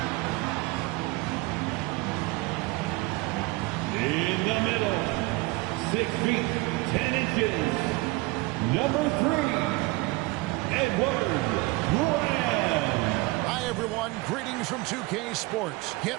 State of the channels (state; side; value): quieter; left; 22.9 dB